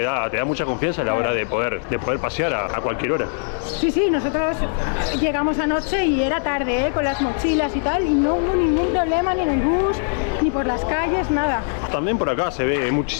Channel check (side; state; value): right; silent; 61 dB below the other